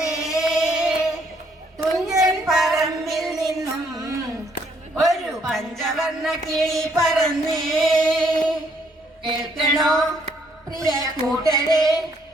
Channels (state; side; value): normal; both; correlation 0.68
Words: തുഞ്ചൻ പറമ്പിൽ നിന്നും, ഒരു പഞ്ചവർണ്ണ കിളി പറന്നേ. കേൾക്കണോ പ്രിയ കൂട്ടരെ,